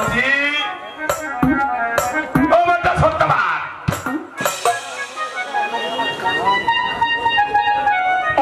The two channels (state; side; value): identical; both; correlation 1.00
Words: ও বেটা সত্যবান,